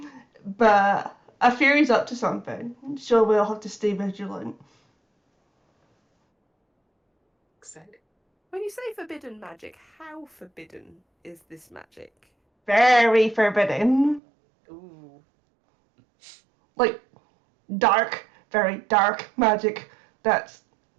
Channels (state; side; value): drops out; left; at 14.2 s